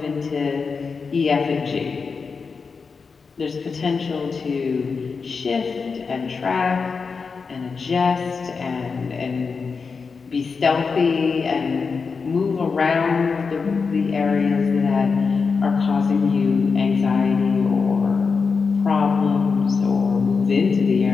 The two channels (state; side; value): quieter; right; 5.1 dB